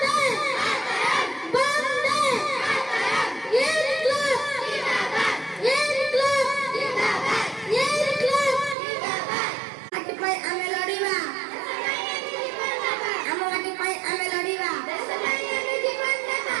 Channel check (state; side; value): drops out; left; at 8.8 s